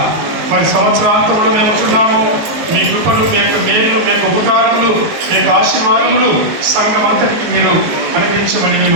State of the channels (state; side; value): late; left; 19 ms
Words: మరి సంవత్సరాంతంలో మేము ఉంటున్నాము. మీ కృపలు, మీ యొక్క మేలు, మీ యొక్క ఉపకారములు, మీ యొక్క ఆశీర్వాదములు సంఘం అంతటికి మీరు అనుగ్రహించమని